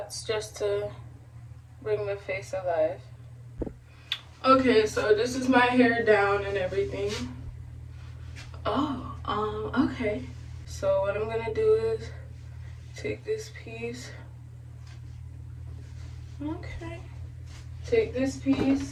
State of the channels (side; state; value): both; identical; correlation 1.00